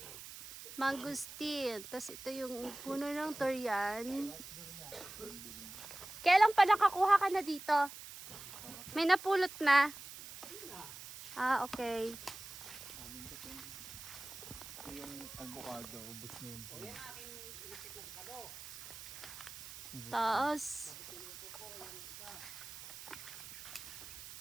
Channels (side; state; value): right; noise; hiss, 12 dB below the sound